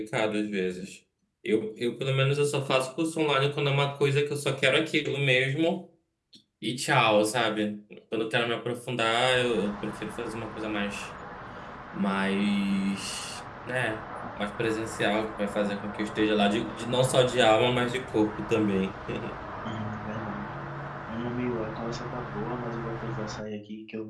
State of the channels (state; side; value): identical; both; correlation 1.00